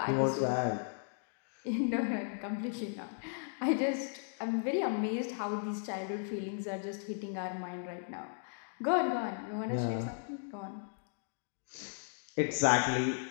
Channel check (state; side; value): silent; right; digital silence